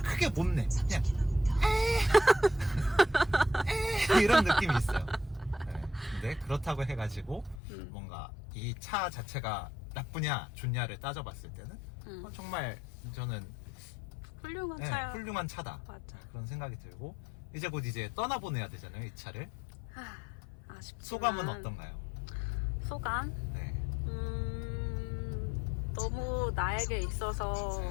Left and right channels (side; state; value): right; drops out; at 7.6 s